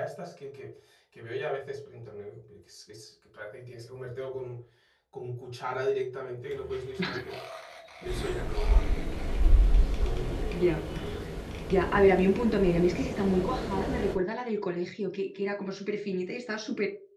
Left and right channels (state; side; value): identical; both; correlation 1.00